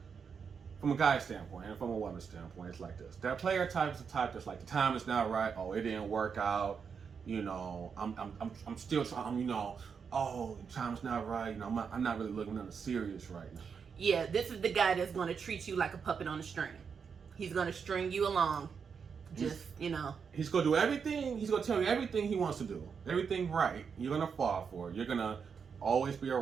From a guy's standpoint and from a woman's standpoint, it's like this. That player type is the type that's like, the time is not right. Oh, it didn't work out. I'm still trying, oh, the time's not right. I'm not really looking nothing serious right now. Yeah, this is the guy that's going to treat you like a puppet on a string. He's going to string you along. He's going to do everything. He's going to tell you everything he wants to do. Everything right. You're going to fall for it. You're going to always be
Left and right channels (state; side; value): quieter; left; 6.3 dB